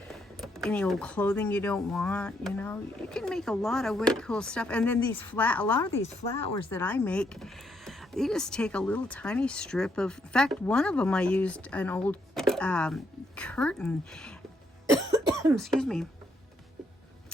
any old clothing you don't want, you know, you can make a lot of really cool stuff. And then a lot of these flowers that I make, you just take a little tiny strip of, in fact, one of them I used an old curtain, excuse me,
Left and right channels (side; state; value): both; normal; correlation 0.75